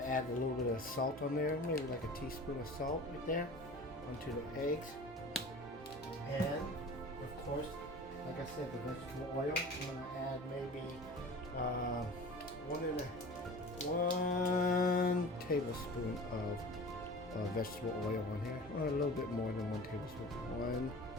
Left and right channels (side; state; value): both; normal; correlation 0.39